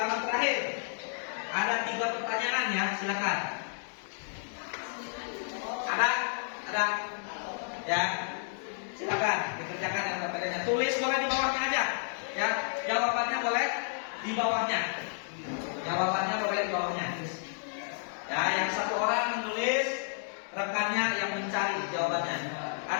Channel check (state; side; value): silent; right; 57 dB below the other